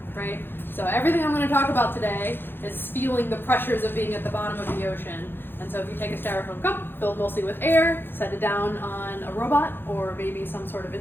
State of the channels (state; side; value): late; right; 0.10 ms